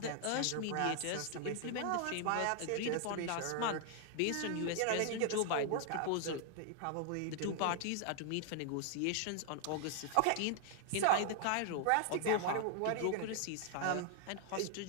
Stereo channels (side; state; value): both; different; correlation 0.00